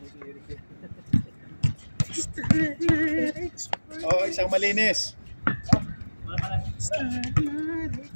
Oh, isang malinis.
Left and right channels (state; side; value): inverted; both; correlation -1.00